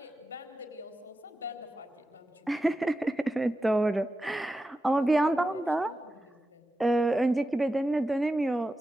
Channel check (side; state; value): both; normal; correlation 0.92